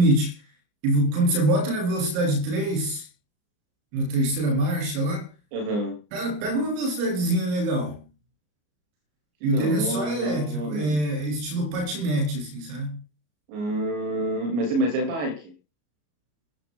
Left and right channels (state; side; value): late; left; 34 ms